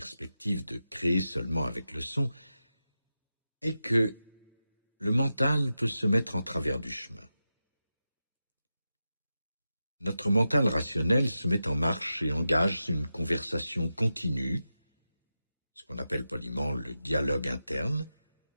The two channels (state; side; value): inverted; both; correlation -0.91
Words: de créer seulement avec le son est que le mental peut se mettre en travers du chemin. Notre mental rationnel se met en marche et engage une conversation continue, ce qu'on appelle poliment le dialogue interne,